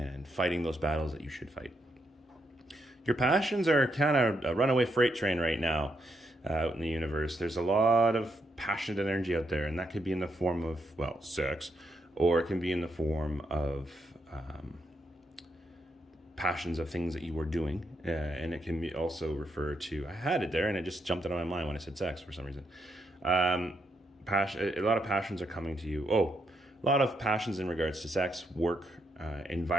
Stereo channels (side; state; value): both; normal; correlation 0.79